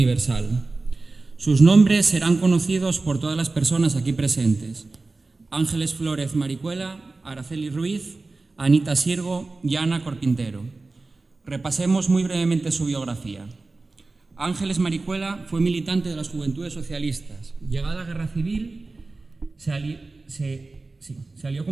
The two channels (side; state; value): left; quieter; 3.5 dB